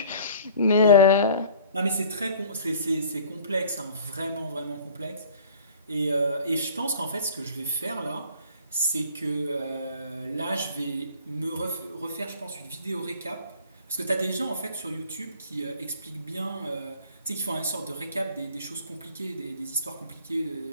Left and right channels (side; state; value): both; inverted; correlation -0.49